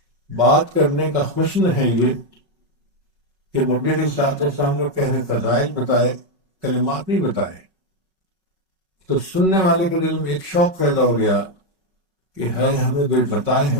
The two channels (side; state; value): left; late; 5.3 ms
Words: بات کرنے کا حسن ہے یہ کہ نبی علیہ الصلوۃ والسلام نے پہلے فضائل بتائے، کلمات نہیں بتائے، تو سننے والے کے دل میں ایک شوق پیدا ہو گیا کہ ہے ہمیں کوئی بتائے